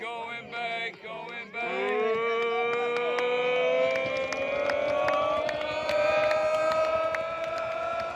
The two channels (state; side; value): identical; both; correlation 1.00